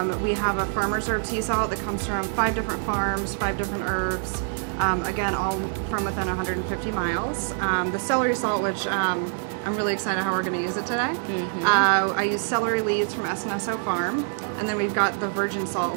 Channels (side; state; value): left; silent; 61 dB below the other